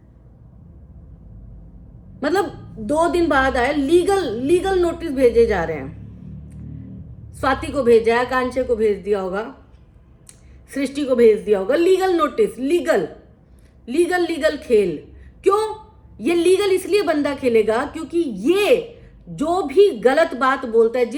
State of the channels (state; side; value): identical; both; correlation 1.00